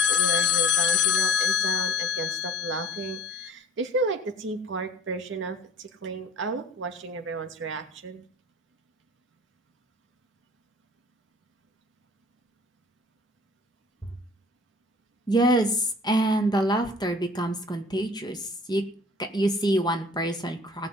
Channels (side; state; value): both; normal; correlation 0.49